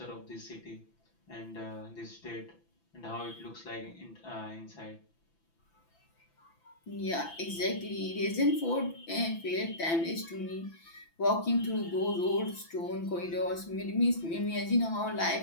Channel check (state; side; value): late; right; 6.0 ms